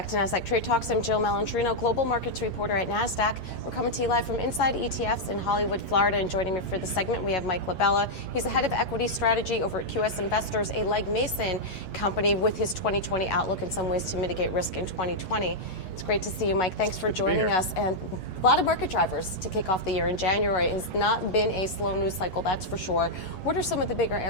to Nasdaq Trade Talks. I'm Jill Malandrino, global markets reporter at Nasdaq. We're coming to you live from Inside ETFs in Hollywood, Florida. And joining me for the segment, we have Mike LaBella. He's the head of equity strategy over at QS Investors, a Legg Mason company, with his 2020 outlook and some ways to mitigate risk in 2020. It's great to see you, Mike. Thanks for joining us. And a lot of market drivers to kick off the year. In January, it has not been a slow news cycle, that's for sure. What are some of the bigger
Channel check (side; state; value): right; late; 8.6 ms